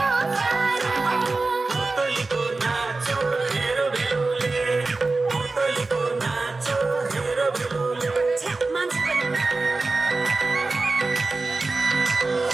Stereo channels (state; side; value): quieter; left; 3.6 dB